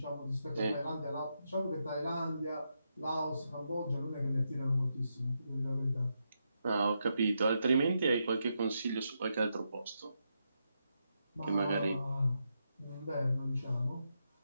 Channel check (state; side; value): inverted; both; correlation -0.83